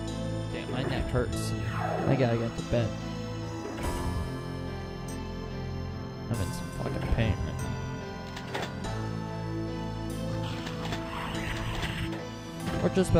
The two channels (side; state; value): both; identical; correlation 1.00